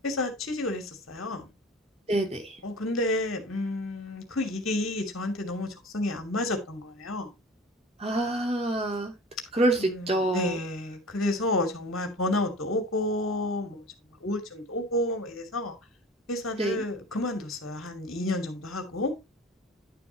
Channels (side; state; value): both; normal; correlation 0.41